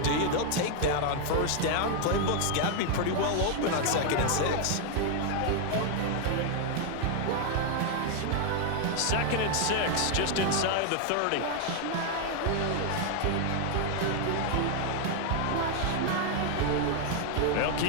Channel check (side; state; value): both; different; correlation 0.00